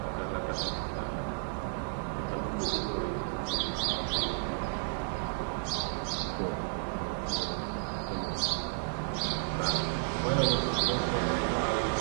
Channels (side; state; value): left; silent; digital silence